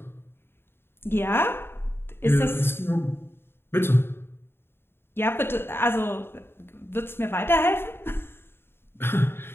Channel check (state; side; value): late; right; 0.11 ms